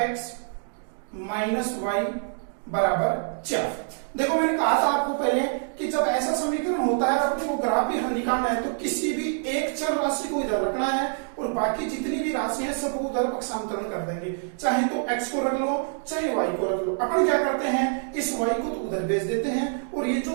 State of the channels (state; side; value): silent; left; digital silence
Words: - y बराबर 4। देखो, मैंने कहा था आपको पहले कि जब ऐसा समीकरण होता है अपने को ग्राफी हल निकालना है तो किसी भी एक चर राशि को इधर रखना है और बाकी जितनी भी राशि है सबको उधर पक्षांतरण कर देंगे। चाहे तो x को रख लो, चाहे y को रख लो। अपन क्या करते हैं, इस y को तो उधर भेज देते हैं और ये